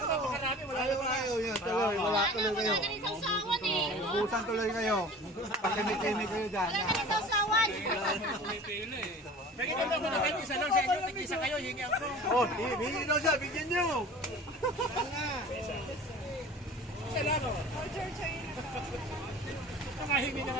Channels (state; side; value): normal; both; correlation 0.41